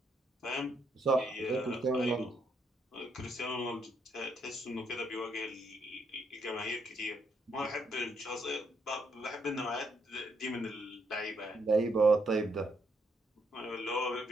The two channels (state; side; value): normal; both; correlation 0.75